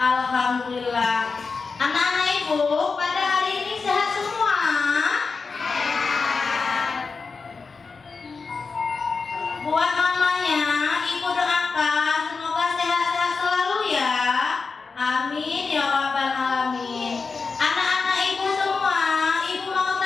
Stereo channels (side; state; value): right; quieter; 4.6 dB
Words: Anak-anak ibu pada hari ini sehat semua? Buat mamanya, ibu doakan semoga sehat-sehat selalu ya. Amin ya rabbal alamin. Anak-anak ibu semua, ibu mau